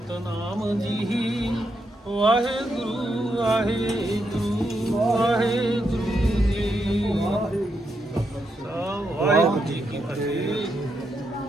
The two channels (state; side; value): normal; both; correlation 0.81